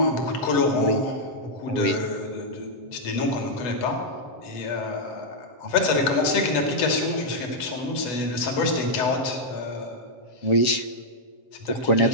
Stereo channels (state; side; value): late; right; 8.1 ms